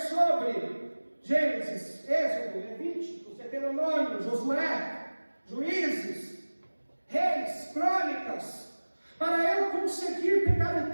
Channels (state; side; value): inverted; both; correlation -1.00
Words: Gênesis, Êxodo, Levítico, Deuteronômio, Josué, Juízes, Reis, Crônicas, para eu conseguir pegar o